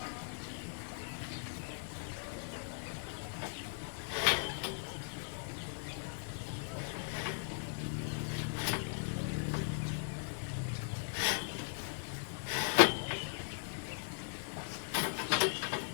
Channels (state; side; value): silent; right; 52 dB below the other